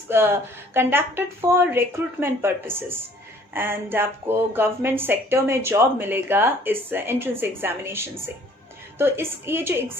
conducted for recruitment purposes. And आपको गवर्नमेंट सेक्टर में जॉब मिलेगा इस एंट्रेंस एग्जामिनेशन से। तो ये जो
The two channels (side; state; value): both; normal; correlation 0.56